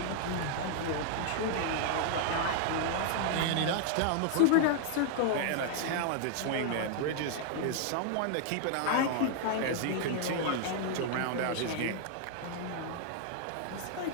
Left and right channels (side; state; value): both; different; correlation 0.00